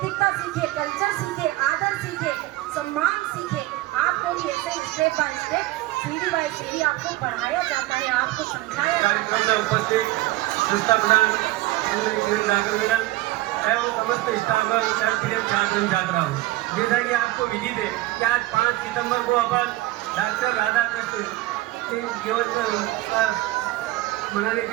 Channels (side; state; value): left; quieter; 17.7 dB